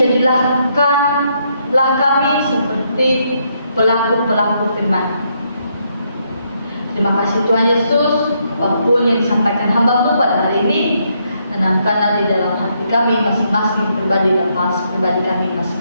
kami seperti pelaku-pelaku firman. Terima kasih Tuhan Yesus, apapun yang disampaikan hamba-Mu pada hari ini, tanamkanlah di dalam hati kami masing-masing pribadi dan pribadi kami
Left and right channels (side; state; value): both; inverted; correlation -0.75